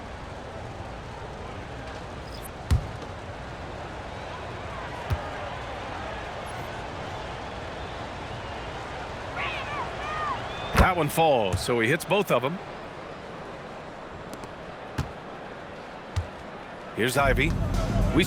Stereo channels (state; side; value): identical; both; correlation 1.00